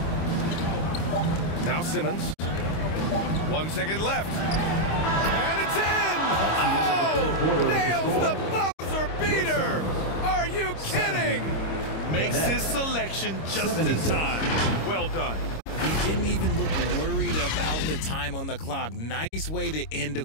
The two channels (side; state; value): right; late; 26 ms